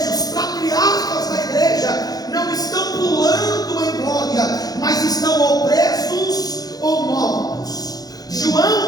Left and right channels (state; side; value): late; right; 0.19 ms